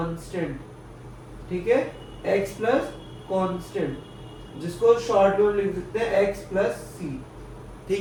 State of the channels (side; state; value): both; identical; correlation 1.00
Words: ठीक है? x प्लस कांस्टेंट, जिसको शॉर्ट में लिख सकते हैं x प्लस c,